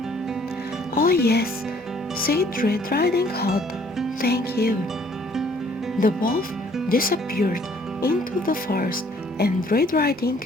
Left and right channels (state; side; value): normal; both; correlation 0.60